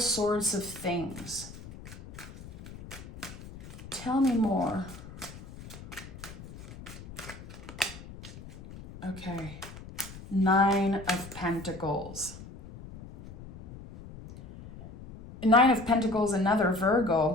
of things. Tell me more. Okay, 9 of Pentacles. 9 of Pentacles, another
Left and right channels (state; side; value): noise; left; rumble, 15 dB below the sound